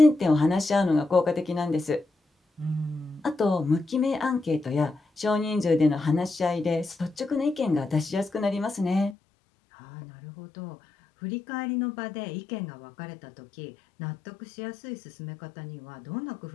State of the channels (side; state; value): right; drops out; at 9.2 s